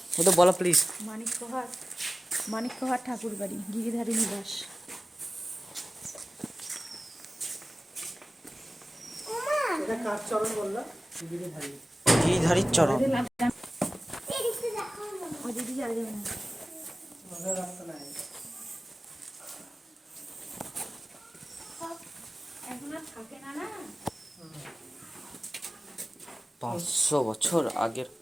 ও তো বলো প্লিজ। মানিক্যহাট ঠাকুর বাড়ি, গিরিধারী নিবাস। গিরিধারীর চরণ। এখন আর থাকে না না। 500 বছর আগের,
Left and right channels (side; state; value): both; normal; correlation 0.97